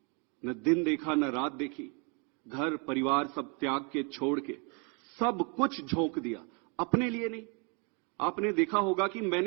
न दिन देखा, न रात देखी। घर परिवार सब त्याग के, छोड़ के, सब कुछ झोंक दिया। अपने लिए नहीं। आपने देखा होगा कि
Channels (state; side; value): quieter; left; 35.0 dB